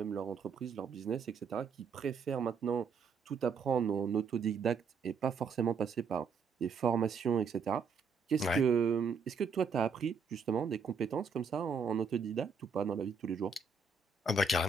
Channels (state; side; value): quieter; left; 5.1 dB